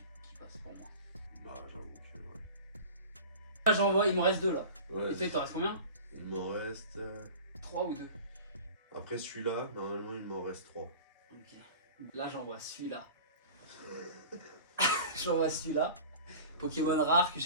passe pour moi. Bah, j'avoue que ouais. Là, j'envoie, il me reste 2 là. Ouais, et toi, il t'en reste combien? Il m'en reste 3 ou 2. Après celui-là, normalement, il m'en reste 3. Ok. Là, j'envoie celui-là. J'envoie celui-là. Pokémon rare que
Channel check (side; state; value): both; inverted; correlation -0.38